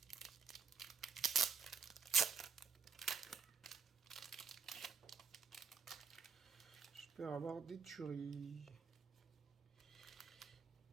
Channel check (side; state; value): left; quieter; 5.9 dB